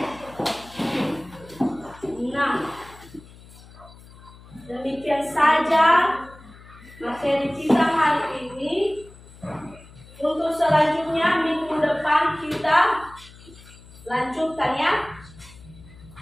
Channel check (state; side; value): noise; left; hum, 21 dB below the sound